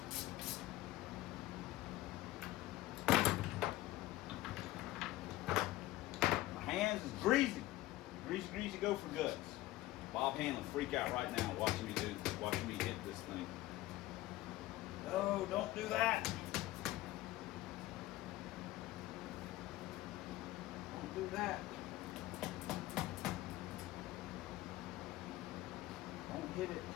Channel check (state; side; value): quieter; right; 16.8 dB